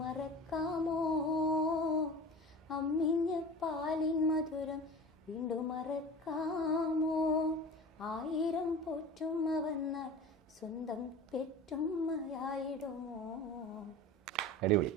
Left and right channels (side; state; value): both; normal; correlation 0.36